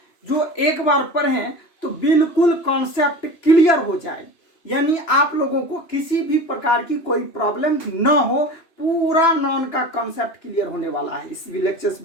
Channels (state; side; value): late; right; 2.9 ms